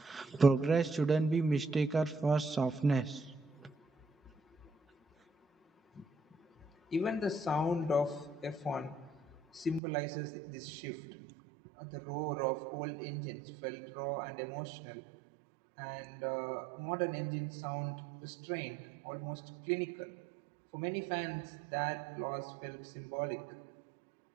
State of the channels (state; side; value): drops out; left; at 9.8 s